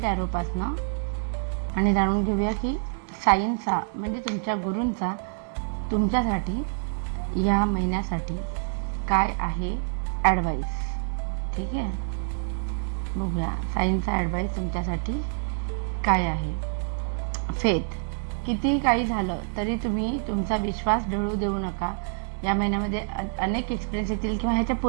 ॲरोपासनं आणि जाणून घेऊया की साईंचा म्हणजे तुमच्या गुरूंचा तुमच्यासाठी या महिन्यासाठी काय आहे ॲडवाईस. ठीक आहे, बघूया साईंचा ॲडवाईस तुमच्यासाठी काय आहे. फेथ, किती काही झालं तरी तुम्ही तुमचा विश्वास ढळू देऊ नका. या महिन्यामध्ये अनेक एक्सपिरियन्स येतील किंवा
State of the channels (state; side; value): silent; left; digital silence